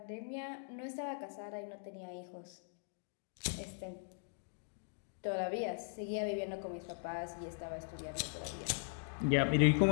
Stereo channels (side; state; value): right; silent; digital silence